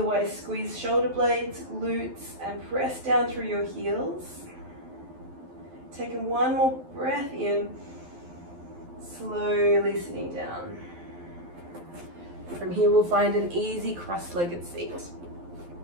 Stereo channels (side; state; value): left; late; 12 ms